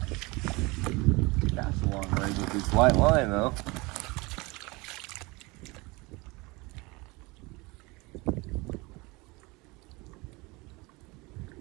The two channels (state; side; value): quieter; left; 24.8 dB